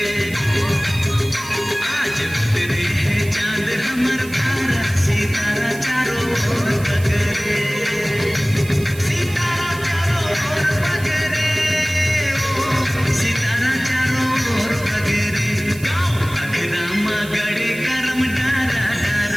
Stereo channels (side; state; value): right; noise; hiss, 16 dB below the sound